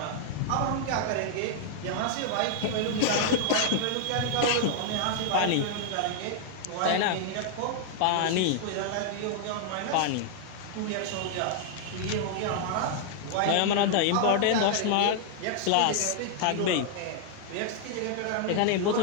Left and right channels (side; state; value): both; different; correlation -0.01